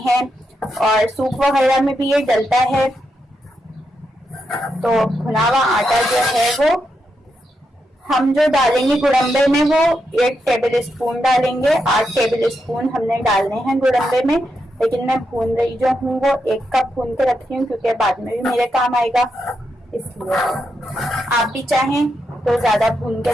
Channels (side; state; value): both; normal; correlation 0.84